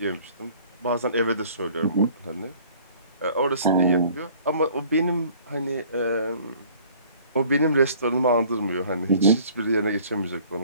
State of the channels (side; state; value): both; inverted; correlation -0.53